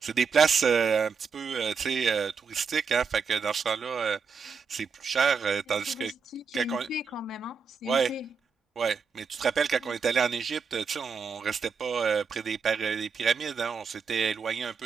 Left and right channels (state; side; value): quieter; left; 5.7 dB